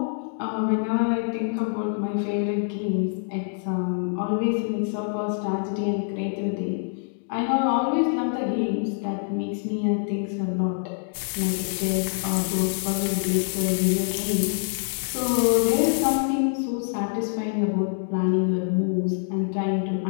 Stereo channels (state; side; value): silent; right; digital silence